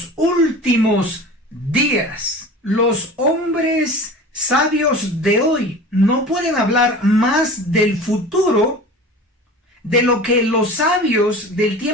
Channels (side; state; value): both; normal; correlation 0.37